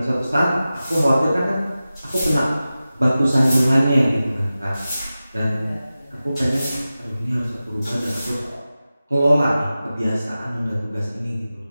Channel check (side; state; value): both; inverted; correlation -0.95